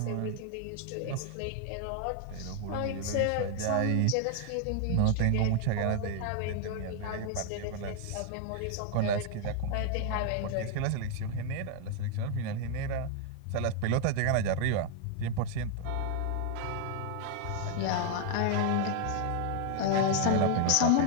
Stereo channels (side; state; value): both; different; correlation 0.00